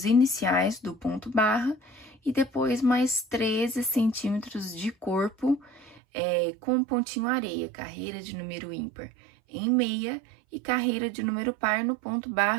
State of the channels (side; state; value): left; drops out; at 6.0 s